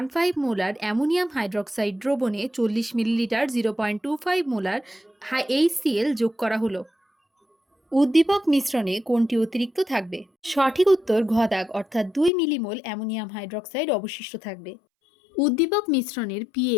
মোলার অ্যামোনিয়াম হাইড্রক্সাইড দ্রবণে 40 মিলিলিটার 0.25 মোলার HCl যোগ করা হলো। উদ্দীপক মিশ্রণে কোনটি অতিরিক্ত থাকবে? সঠিক উত্তর ঘ দাগ, অর্থাৎ 2 মিলিমোল অ্যামোনিয়াম হাইড্রক্সাইড অবশিষ্ট থাকবে। উদ্দীপক মিশ্রণের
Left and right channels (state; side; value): drops out; right; at 12.3 s